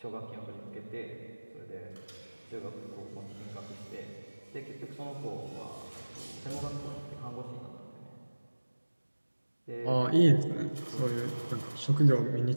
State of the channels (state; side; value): inverted; both; correlation -1.00